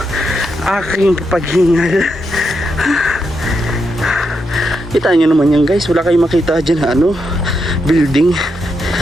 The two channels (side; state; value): both; normal; correlation 0.83